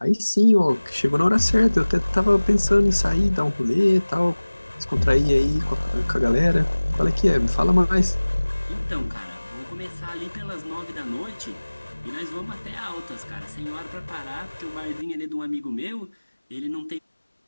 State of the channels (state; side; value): inverted; both; correlation -1.00